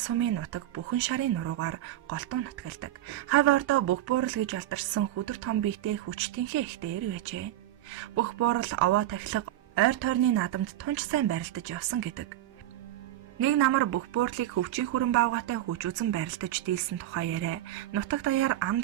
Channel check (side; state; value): left; quieter; 13.7 dB